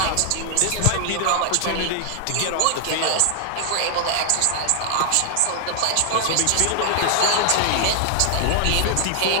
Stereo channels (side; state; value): both; different; correlation 0.00